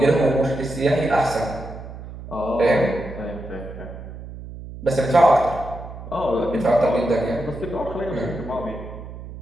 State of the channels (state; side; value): noise; right; hum, 12 dB below the sound